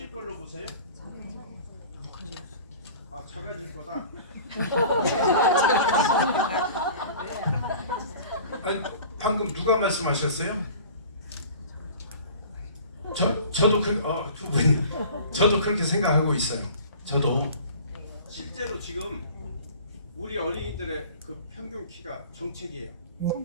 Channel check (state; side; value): inverted; both; correlation -0.43